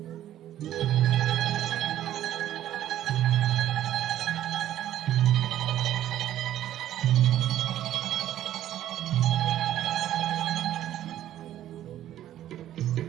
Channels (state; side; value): quieter; left; 12.3 dB